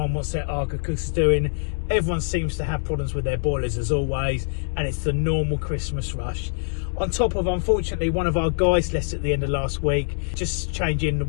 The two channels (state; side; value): silent; right; 62 dB below the other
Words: wants their Arga cookers doing, everyone seems to have problems with their boilers as always, and it's the normal Christmas rush. On top of, unfortunately, one of our guys left at the end of last week, just changing the